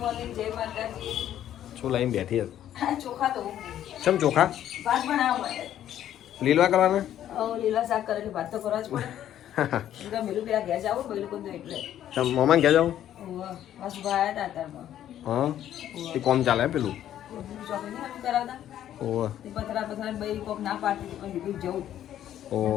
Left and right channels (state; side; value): quieter; right; 11.3 dB